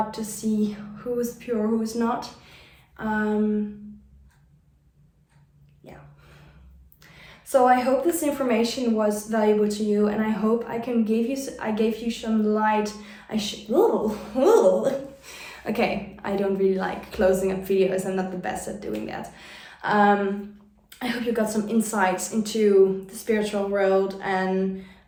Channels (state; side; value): identical; both; correlation 1.00